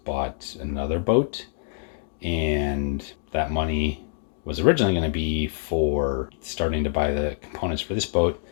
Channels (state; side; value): silent; right; 61 dB below the other